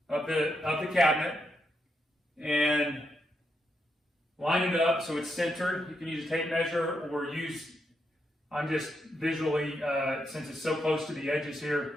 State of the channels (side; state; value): both; normal; correlation 0.82